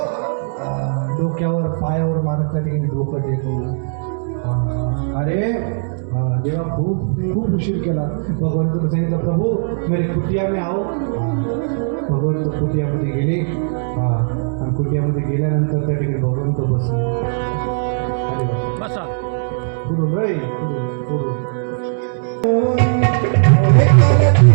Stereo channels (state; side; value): silent; left; digital silence